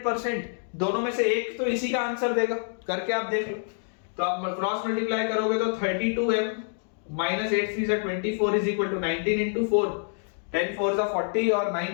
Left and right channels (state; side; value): silent; right; digital silence